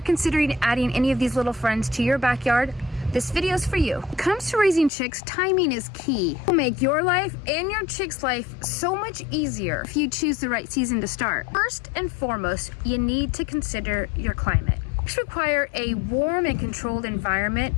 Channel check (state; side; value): drops out; right; at 4.9 s